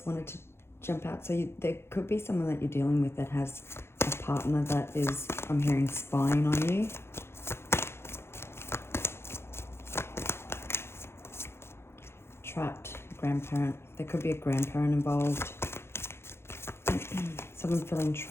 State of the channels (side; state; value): right; late; 0.12 ms